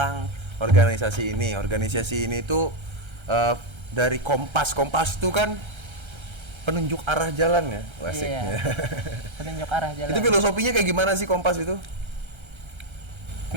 organisasi ini. Organisasi ini tuh dari Kompas itu kan penunjuk arah jalan ya, asik. Iya. Penunjuk arah jalan. Itu filosofinya kayak gimana sih Kompas itu?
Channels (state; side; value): late; left; 1.3 ms